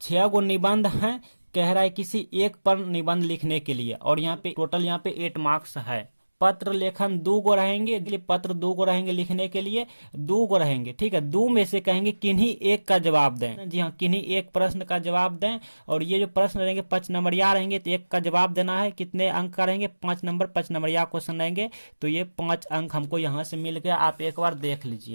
6 गो निबंध हैं, कह रहा है किसी एक पर निबंध लिखने के लिए, और यहाँ पे टोटल यहाँ पे 8 मार्क्स है। पत्र लेखन 2 गो रहेंगे, पत्र 2 गो रहेंगे लिखने के लिए, 2 गो रहेंगे, ठीक है। 2 में से कहेंगे किन्हीं 1 का जवाब दें। जी हाँ, किन्हीं 1 प्रश्न का जवाब दें। और ये जो प्रश्न रहेंगे 5 नंबरिया रहेंगे, तो 1 का जवाब देना है। कितने अंक का रहेंगे? 5 नंबर, 5 नंबरिया क्वेश्चन रहेंगे, तो ये 5 अंक हमको यहाँ से मिल गया। आप एक बार देख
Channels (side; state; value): both; inverted; correlation -1.00